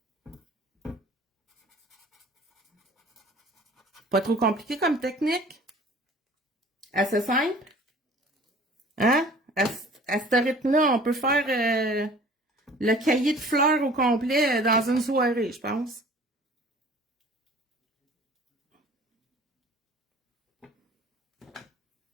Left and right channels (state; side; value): normal; both; correlation 0.48